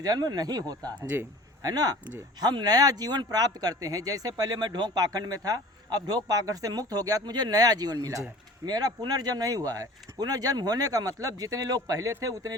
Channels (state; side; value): normal; both; correlation 0.43